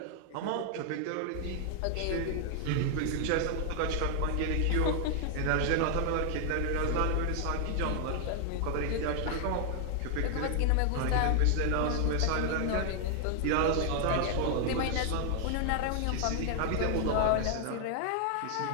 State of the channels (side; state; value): both; different; correlation 0.00